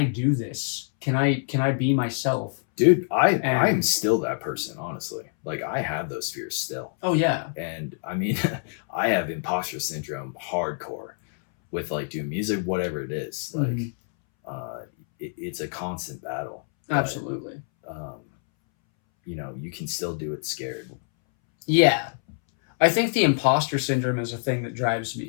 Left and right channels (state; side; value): silent; right; 61 dB below the other